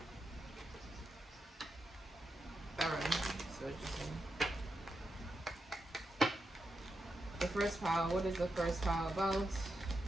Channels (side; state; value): both; normal; correlation 0.87